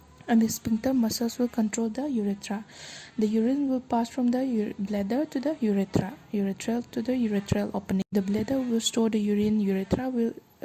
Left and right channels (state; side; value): identical; both; correlation 1.00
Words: and the sphincter muscles will control the urethra. The urine will pass from the bladder to the urethra, urethral to the urethral opening. The bladder will store the urine, urethra will